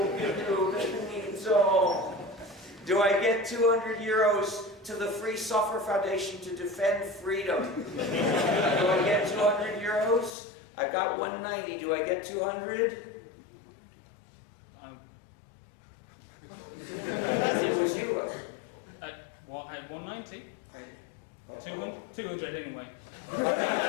GNU that means all? Do I get 200 euros to the Free Software Foundation to defend freedom? Do I get 200 euros? I've got 190. Do I get 200? It was you. At 190. I, 200 anyway.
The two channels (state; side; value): drops out; right; at 10.3 s